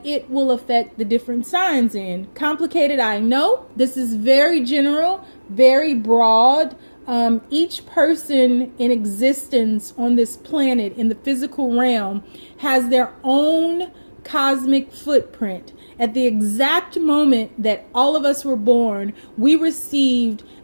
it will affect the different signs in. Complicated, I know. This is very general, very broad. Each person in existence on this planet in the physical realm has their own cosmic footprint. At the exact moment that all of us were born, we received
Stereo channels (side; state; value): both; inverted; correlation -1.00